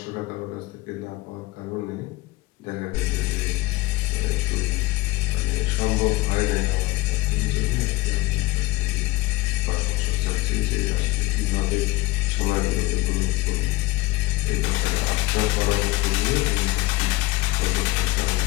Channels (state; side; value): quieter; right; 20.4 dB